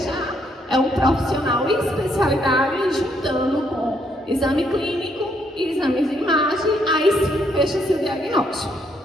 é um profissional em especialidade juntando com exame clínico e exames de imagem, aí sim fecha-se o diagnóstico.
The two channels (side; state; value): both; normal; correlation 0.72